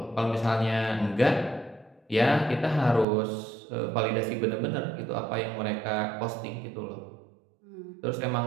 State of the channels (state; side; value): drops out; left; at 3.1 s